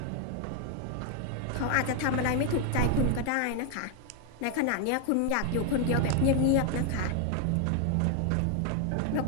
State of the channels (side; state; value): both; different; correlation 0.01